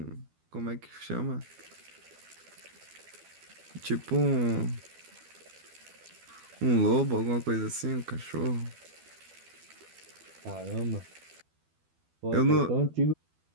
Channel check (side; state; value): left; late; 12 ms